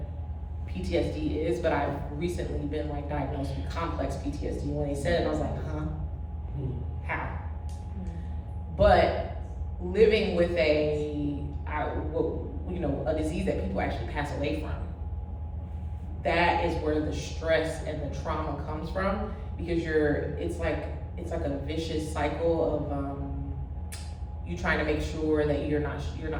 PTSD is, but I've recently been like diagnosed with complex PTSD. When they said it, I was like, huh? How? But living with a disease that people actually pass away from, that is where the stress and the trauma comes from, because it's like a vicious cycle of you trying to make sure that you're not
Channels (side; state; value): both; identical; correlation 1.00